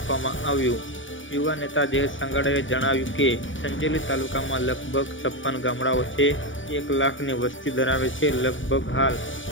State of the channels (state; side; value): late; right; 0.56 ms